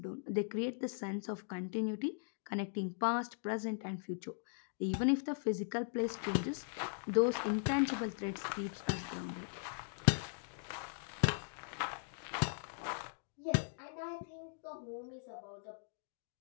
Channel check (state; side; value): silent; right; digital silence